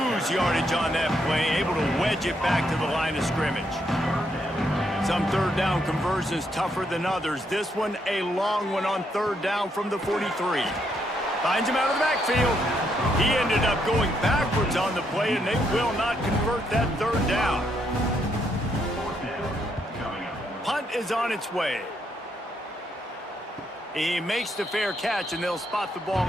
yardage on that play, able to wedge it back to the line of scrimmage. Some 3rd down conversions tougher than others. This one a long one on 3rd down from the 43. Finds him out of the backfield. He ended up going backwards on the play, and they will not convert that 3rd down. Punt is on its way. He makes the fair catch, and they'll spot the ball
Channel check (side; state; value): both; normal; correlation 0.76